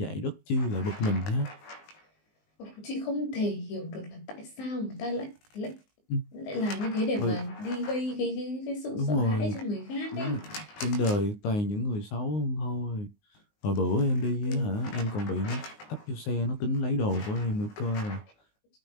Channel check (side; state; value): right; late; 19 ms